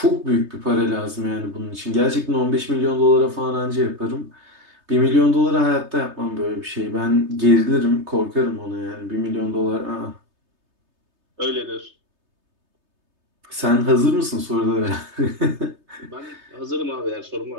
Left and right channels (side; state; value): left; late; 3.3 ms